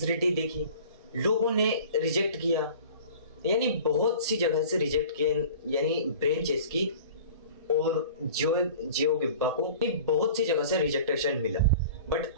देखी, लोगों ने रिजेक्ट किया, यानी बहुत सी जगह से रिजेक्ट किया, यानी ब्रेन चेस्की और जियो गिब्बा को बहुत सी जगह से रिजेक्टेशन मिला। बट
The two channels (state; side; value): inverted; both; correlation -0.43